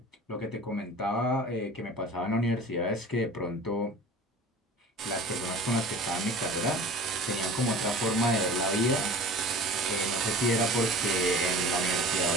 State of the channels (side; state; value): both; normal; correlation 0.40